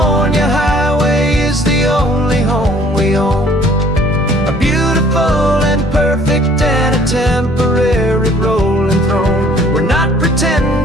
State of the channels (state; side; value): normal; both; correlation 0.56